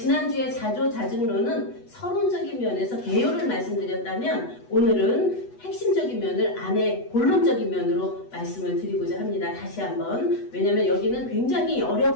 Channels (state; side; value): late; right; 8.1 ms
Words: 자조자증론은 서론적인 면에서 개요를 말씀드렸다면 오늘은 핵심적인 면을 안에 본론적인 면으로 말씀을 드리고자 합니다. 다시 한번. 왜냐면 여기는 굉장히